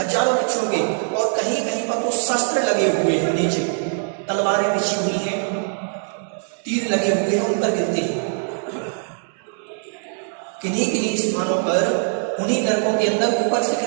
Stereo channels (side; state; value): left; silent; 64 dB below the other